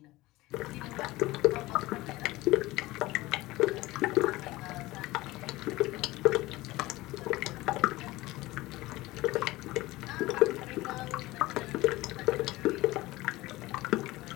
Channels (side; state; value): right; quieter; 19.0 dB